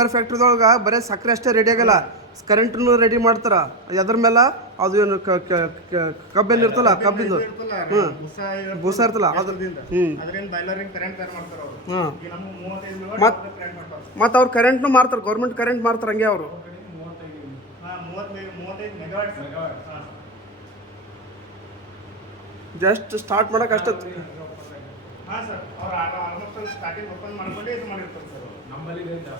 ಫ್ಯಾಕ್ಟ್ರಿದೊಳಗೆ ಬರೀ ಸಕ್ಕರೆ ಅಷ್ಟೇ ರೆಡಿ ಆಗಲ್ಲ ಕರೆಂಟ್ನು ರೆಡಿ ಮಾಡ್ತಾರ ಅದ್ರ ಮೇಲೆ ಅದು ಏನು ಕಬ್ಬೇನು ಇರ್ತಲ್ಲ ಕಬ್ಬಿಂದು ಬೂಸ ಇರ್ತಲ್ಲ ಅದರಿಂದ ಬಾಯ್ಲರಿಂಗ್ ಕರೆಂಟ್ ತಯಾರು ಮಾಡ್ತಾರೆ ಅವರು ಈಗ ನಮ್ಗೆ 35 ಕರೆಂಟ್ ಮಾಡ್ತಾರೆ ಮತ್ತು ಅವ್ರು ಕರೆಂಟ್ನು ಮಾರ್ತಾರೆ ಗೌರ್ಮೆಂಟ್ ಕರೆಂಟ್ ಮಾರ್ತಾರೆ ಹಂಗೆ ಅವರು 35 ಮೆಗಾವಾಟ್ ಜಸ್ಟ್ ಸ್ಟಾರ್ಟ್ ಮಾಡಕ್ಕೆ ಅಷ್ಟೇ ಹಾಂ ಸರ್ ಅವ್ರು ಆಲ್ಮೋಸ್ಟ್ ಸ್ಟಾರ್ಟಿಂಗ್ ಓಪನ್ ಮಾಡ್ಕೊಂಡೇ ಇದು ಮಾಡಿರ್ತಾರೆ ಸರ್ ನಮ್ಮಲ್ಲಿ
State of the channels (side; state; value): both; normal; correlation 0.15